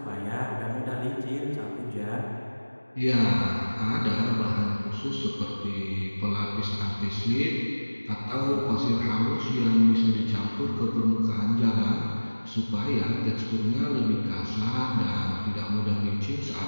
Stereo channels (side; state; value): both; inverted; correlation -1.00